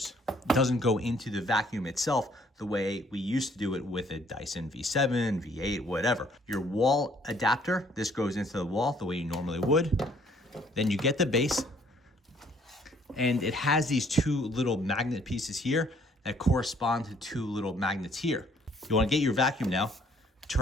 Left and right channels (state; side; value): normal; both; correlation 0.62